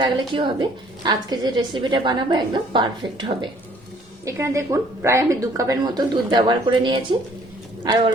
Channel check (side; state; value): both; normal; correlation 0.59